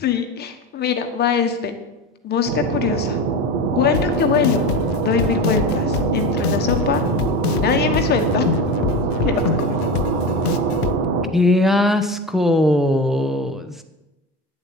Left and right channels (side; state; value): both; normal; correlation 0.24